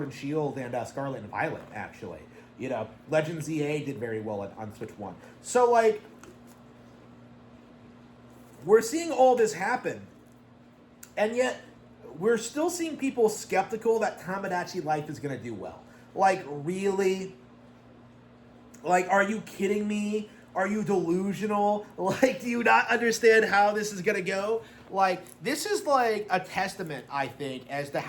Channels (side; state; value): both; identical; correlation 1.00